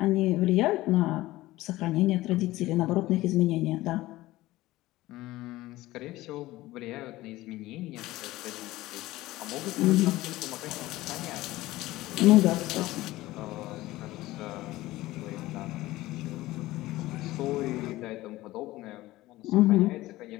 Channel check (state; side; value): quieter; right; 17.5 dB